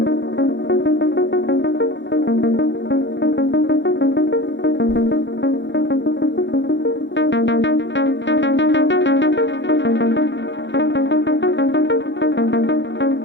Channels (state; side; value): late; right; 0.53 ms